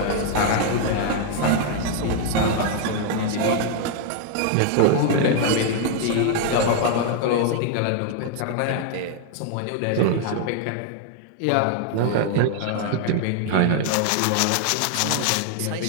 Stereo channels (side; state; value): both; different; correlation 0.00